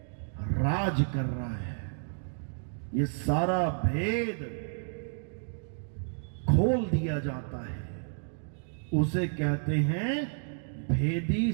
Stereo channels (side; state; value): left; silent; digital silence